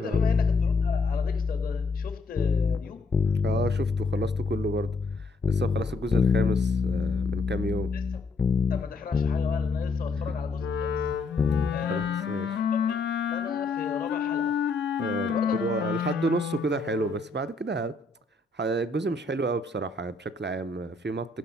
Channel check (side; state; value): right; quieter; 3.6 dB